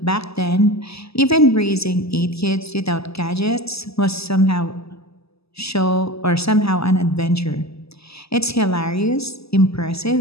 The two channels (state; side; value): late; right; 0.78 ms